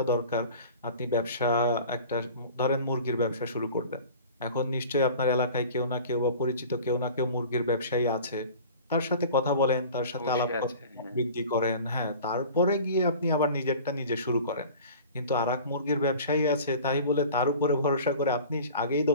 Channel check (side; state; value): both; inverted; correlation -0.42